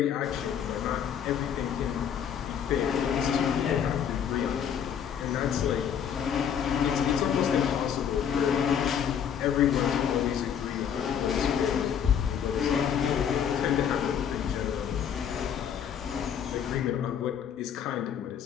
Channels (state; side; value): quieter; right; 8.4 dB